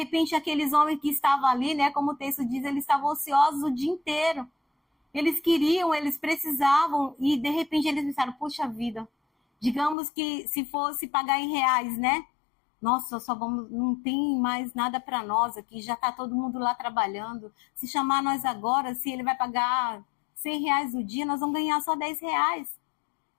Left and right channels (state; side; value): drops out; right; at 10.0 s